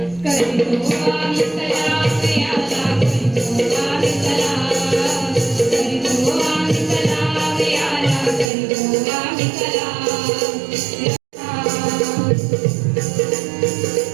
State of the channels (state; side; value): drops out; left; at 8.5 s